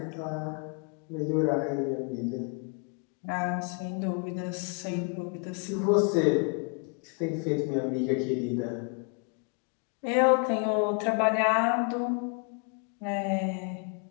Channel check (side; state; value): right; quieter; 38.0 dB